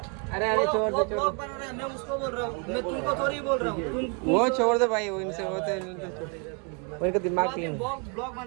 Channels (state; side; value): quieter; left; 33.8 dB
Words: अरे अरे छोड़ दो मैं उसको बोल रहा हूँ, मैं तुमको थोड़ी बोल रहा हूँ. वो छोड़ दो भाई, वो इनसे होते उनका दिमाग नहीं. ब्लॉग